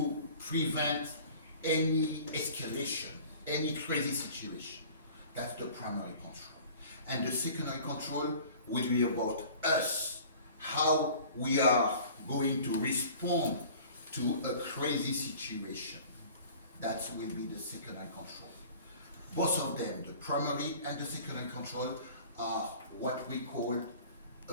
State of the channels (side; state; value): both; inverted; correlation -0.45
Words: prevent any escalation, any crazy situation. That's the primary control. And the secondary control will be about us, how we are going to respond to a crazy situation. That will be the secondary control. Both of them, the primary and the secondary control, are what we call